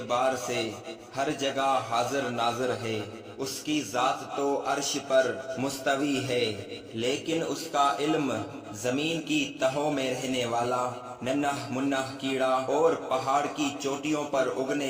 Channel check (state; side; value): identical; both; correlation 1.00